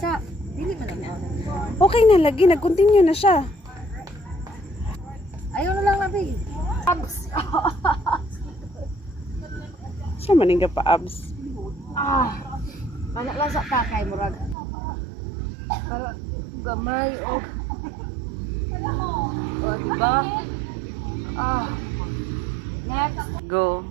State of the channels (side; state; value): left; drops out; at 14.6 s